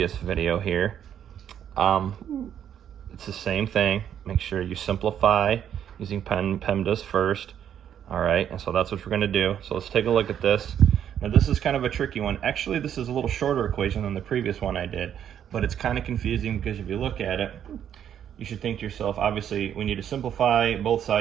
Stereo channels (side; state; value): left; quieter; 9.5 dB